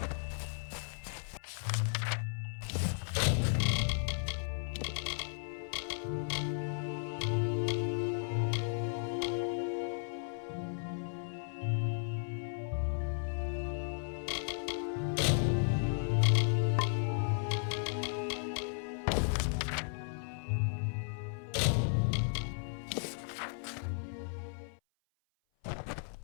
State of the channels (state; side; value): silent; right; 54 dB below the other